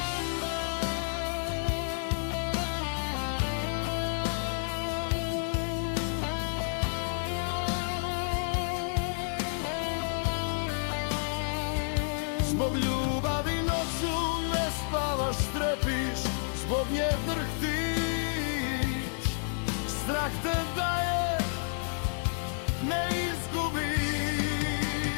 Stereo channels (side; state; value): right; silent; 58 dB below the other